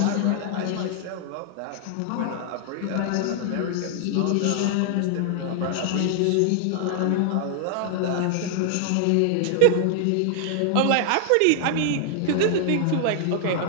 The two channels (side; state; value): both; different; correlation 0.00